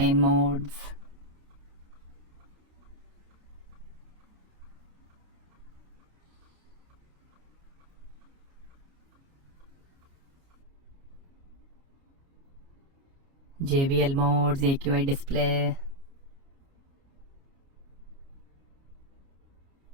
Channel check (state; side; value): late; left; 29 ms